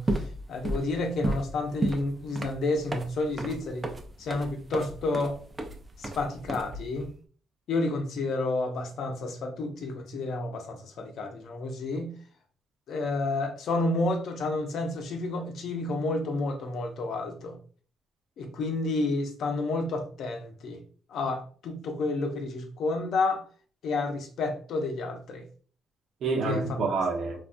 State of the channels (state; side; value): normal; both; correlation 0.71